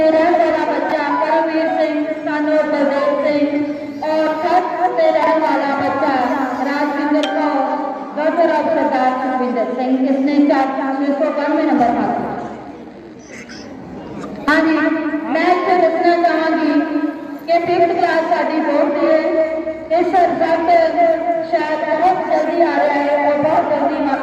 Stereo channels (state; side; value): identical; both; correlation 1.00